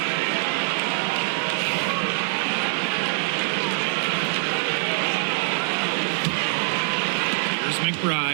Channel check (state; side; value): silent; left; digital silence